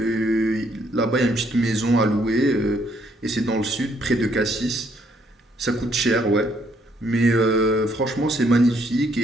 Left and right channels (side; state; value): both; normal; correlation 0.69